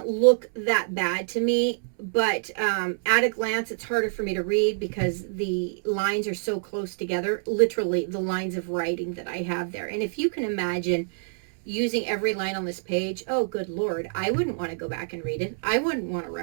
look that bad to me, but at a glance, it's harder for me to read because the lines are so close together, literally the lines of writing that I have there. And if you can imagine using every line on this page, oh, good Lord, I wouldn't want to go back and read it. I wouldn't want to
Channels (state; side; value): silent; left; 61 dB below the other